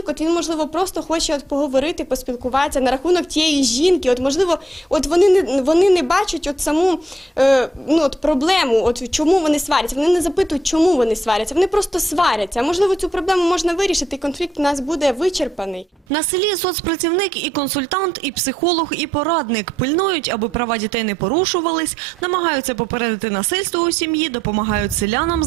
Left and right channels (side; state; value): both; normal; correlation 0.77